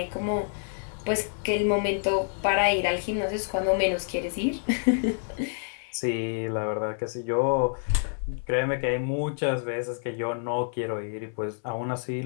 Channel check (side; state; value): right; silent; 58 dB below the other